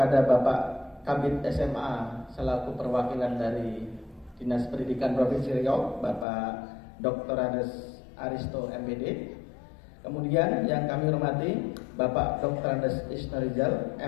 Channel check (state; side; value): drops out; right; at 6.2 s